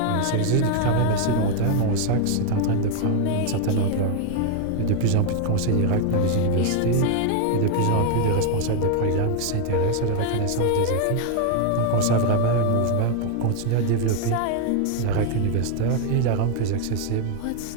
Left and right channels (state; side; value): different; both; correlation 0.01